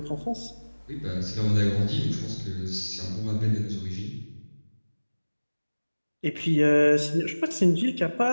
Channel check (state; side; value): inverted; both; correlation -1.00